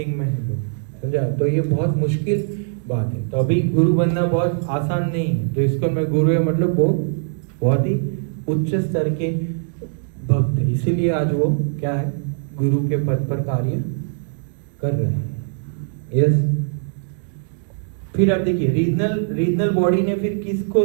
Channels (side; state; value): left; silent; digital silence